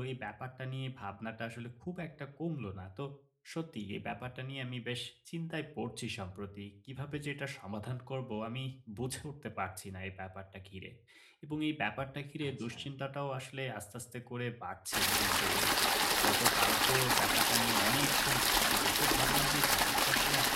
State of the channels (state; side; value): identical; both; correlation 1.00